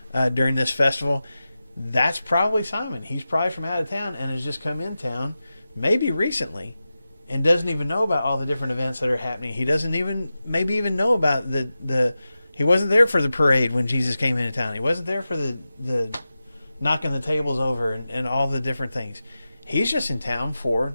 during this festival. That's probably Simon. He's probably from out of town and has just come in town, maybe recently, and doesn't even know about all the different events that are happening. He doesn't maybe even know about he wasn't there for the parade when Jesus came into town. He wasn't there for the knocking the tables over and all the different things. He's just in town for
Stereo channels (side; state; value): both; inverted; correlation -0.93